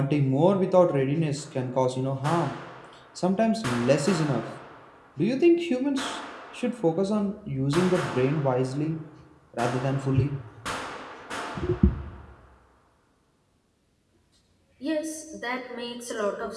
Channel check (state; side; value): identical; both; correlation 1.00